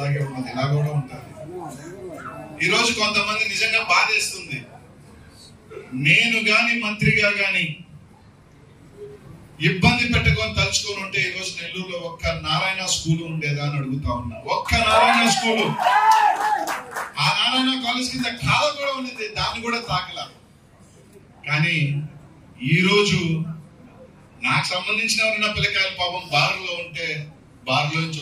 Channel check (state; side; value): identical; both; correlation 1.00